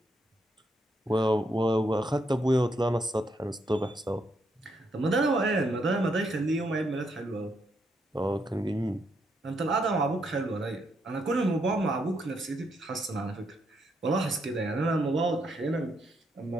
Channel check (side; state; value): both; normal; correlation 0.77